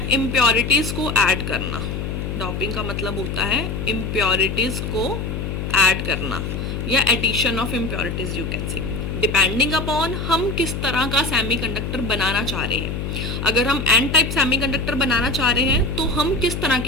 इम्प्योरिटीज़ को ऐड करना. डॉपिंग का मतलब होता है इम्प्योरिटीज़ को ऐड करना या addition of impurities you can say, depending upon हम किस तरह का सेमीकंडक्टर बनाना चाह रहे हैं. अगर हम एन टाइप सेमीकंडक्टर बनाना चाह रहे हैं तो हम किस तरह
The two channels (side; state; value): left; noise; hum, 4 dB below the sound